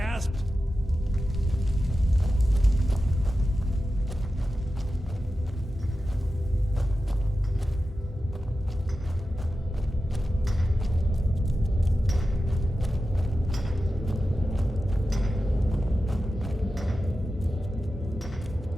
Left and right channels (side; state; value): both; normal; correlation 0.92